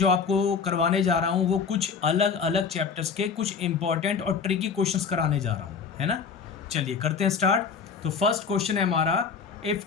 आपको करवाने जा रहा हूँ वो कुछ अलग अलग चैप्टर्स के कुछ इंपॉर्टेंट और ट्रिकी क्वेश्चंस कराने जा रहा हूँ, है ना। चलिए करते हैं स्टार्ट। तो फर्स्ट क्वेश्चन है हमारा, if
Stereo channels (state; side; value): quieter; right; 6.0 dB